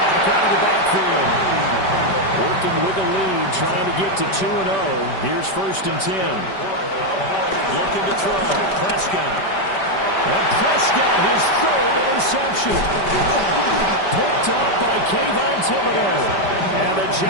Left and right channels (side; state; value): right; late; 5.1 ms